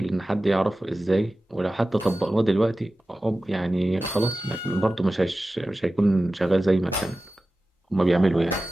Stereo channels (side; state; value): both; normal; correlation 0.95